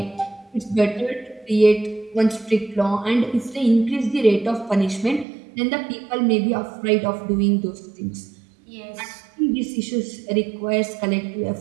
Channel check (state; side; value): drops out; left; at 5.2 s